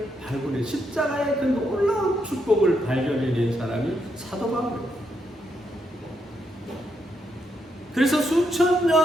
발굴해 십자가의 그 놀라운 축복을 발견해낸 사람이 사도 바울입니다. 그래서 수천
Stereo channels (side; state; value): both; normal; correlation 0.79